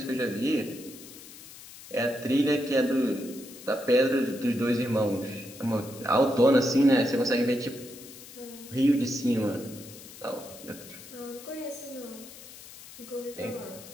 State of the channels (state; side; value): noise; left; hiss, 17 dB below the sound